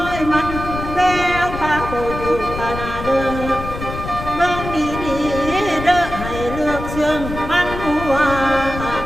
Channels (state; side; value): noise; left; rumble, 8 dB below the sound